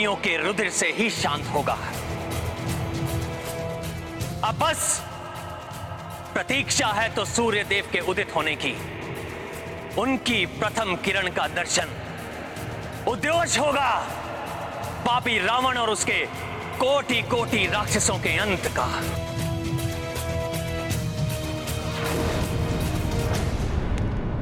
के रुधिर से ही शांत होगा। अब बस प्रतीक्षा है तो सूर्य देव के उदित होने की। उनकी प्रथम किरण का दर्शन उद्योष होगा पापी रावण और उसके कोटि कोटि राक्षसों के अंत का।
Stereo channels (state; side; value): identical; both; correlation 1.00